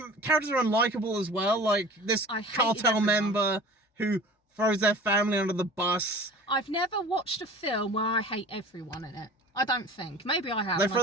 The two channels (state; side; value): normal; both; correlation 0.41